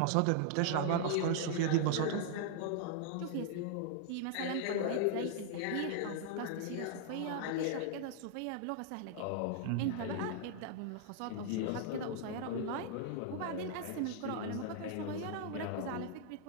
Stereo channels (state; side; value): different; both; correlation -0.01